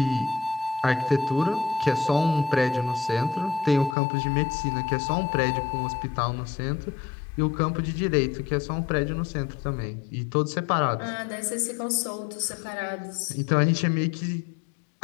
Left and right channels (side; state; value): right; drops out; at 4.0 s